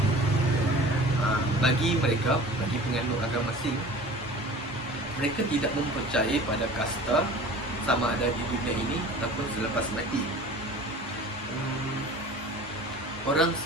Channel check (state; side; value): normal; both; correlation 0.41